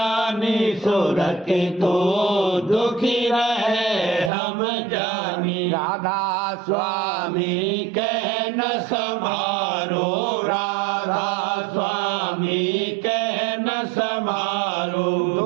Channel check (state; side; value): drops out; left; at 4.3 s